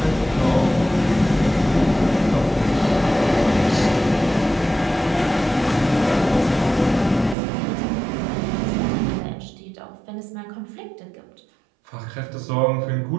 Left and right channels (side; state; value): left; drops out; at 7.4 s